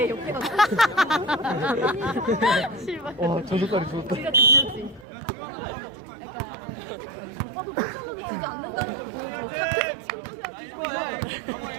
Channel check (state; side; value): drops out; left; at 5.1 s